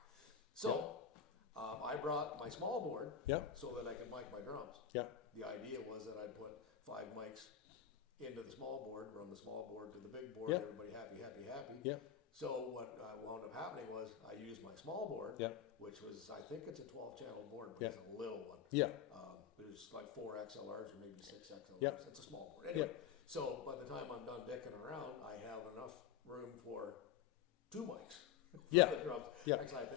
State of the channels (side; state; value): right; quieter; 8.4 dB